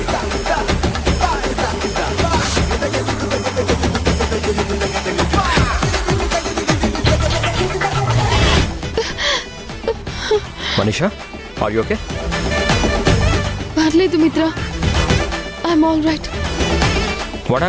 Manisha are you okay? పర్లేదు Mitra, I'm all right. What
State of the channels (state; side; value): identical; both; correlation 1.00